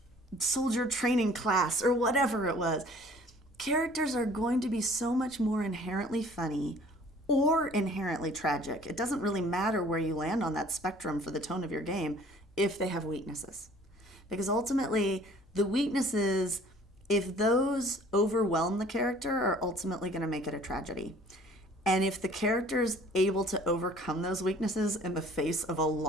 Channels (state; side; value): normal; both; correlation 0.52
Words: soldier training class or whatever it was. Characters are going to be so much more inherently funny or inherently tragic. It doesn't really matter where you land on that spectrum for the tone of your game if they have weaknesses. Because ultimately, the weaknesses, if those overwhelm the character, are ultimately going to make it a tragedy. And if the character's able to overcome those weaknesses in the face of a